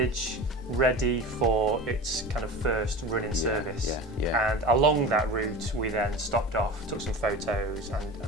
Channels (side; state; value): both; normal; correlation 0.32